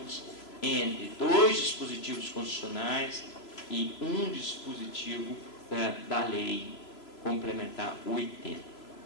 entre dois dispositivos constitucionais e um dispositivo da Lei Complementar 80.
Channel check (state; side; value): late; right; 3.0 ms